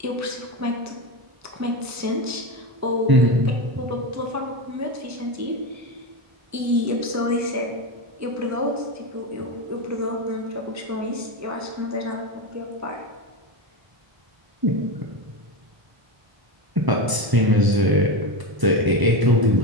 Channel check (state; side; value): late; left; 1.0 ms